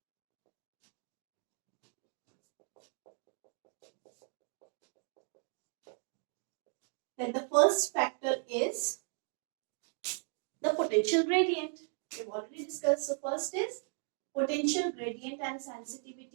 that the first factor is the potential gradient. We have already discussed. So first is potential gradient and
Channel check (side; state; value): left; silent; 53 dB below the other